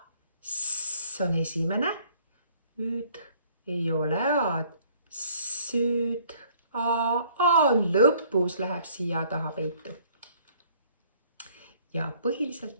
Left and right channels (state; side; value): inverted; both; correlation -0.59